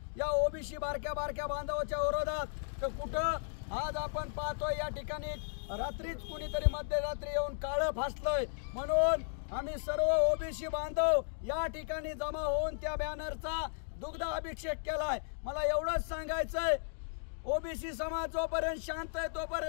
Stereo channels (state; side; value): silent; right; digital silence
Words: या ओबीसी बारक्या बांधवाच्या विरोधात, तर कुठं आज आपण पाहतोय या ठिकाणी रात्रीच कुणीतरी मध्यरात्री येऊन काळं फासलंय। म्हणून आम्ही सर्व ओबीसी बांधव या ठिकाणी जमा होऊन त्या बॅनरचा दुग्ध अभिषेक केलाय। मला एवढंच सांगायचंय, ओबीसी समाज जोपर्यंत शांत आहे